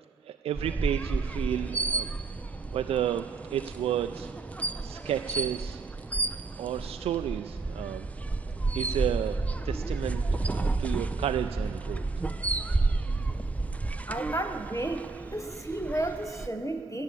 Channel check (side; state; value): left; quieter; 4.3 dB